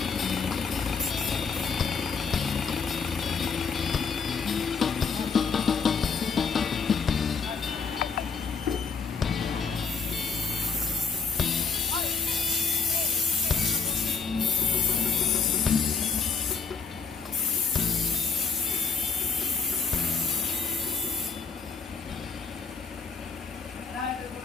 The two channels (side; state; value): right; quieter; 5.2 dB